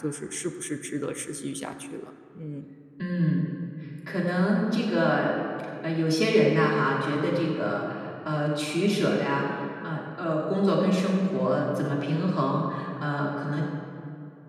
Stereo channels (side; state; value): both; identical; correlation 1.00